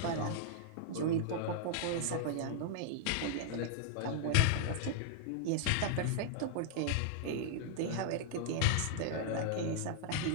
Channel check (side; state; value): both; different; correlation -0.01